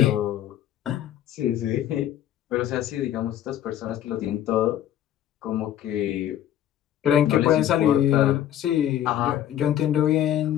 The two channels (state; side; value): quieter; right; 11.5 dB